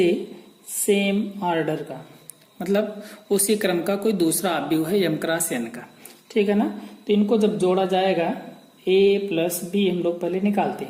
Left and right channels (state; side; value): identical; both; correlation 1.00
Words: same order का, मतलब उसी क्रम का कोई दूसरा अवयव है m क्रॉस n का। ठीक है ना। तो इनको जब जोड़ा जाएगा A प्लस B हम लोग पहले निकालते